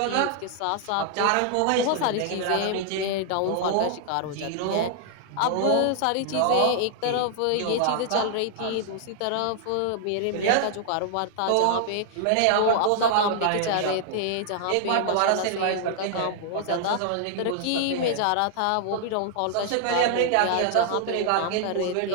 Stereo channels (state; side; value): different; both; correlation 0.00